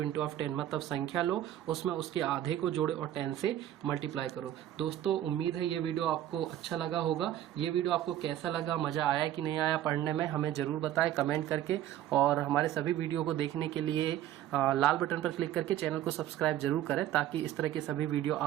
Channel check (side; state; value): left; quieter; 12.3 dB